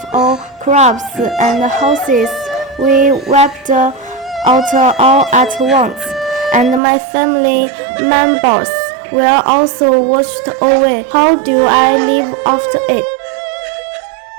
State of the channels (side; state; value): left; drops out; at 6.8 s